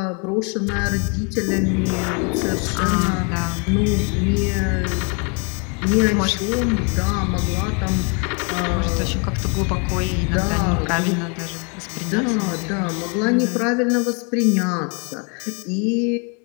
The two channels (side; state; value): right; quieter; 35.0 dB